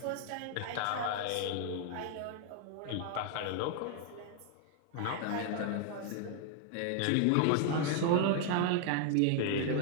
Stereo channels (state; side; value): different; both; correlation 0.00